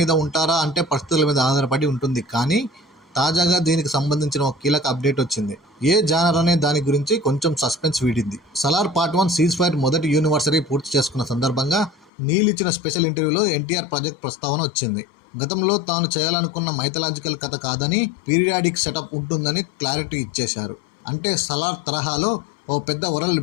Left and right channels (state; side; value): drops out; right; at 12.1 s